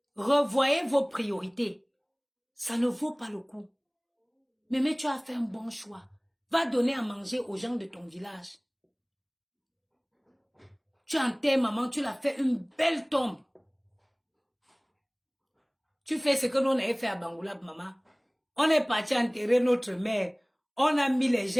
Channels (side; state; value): both; identical; correlation 1.00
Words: Revoyez vos priorités. Ça ne vaut pas le coup. Mais tu as fait un bon choix. Va donner à manger aux gens de ton village. Tu enterres maman, tu l'as fait une belle tombe. Tu fais ce que nous on avait fait à Bangoulab, maman. On est parti enterrer notre mère. On a mis les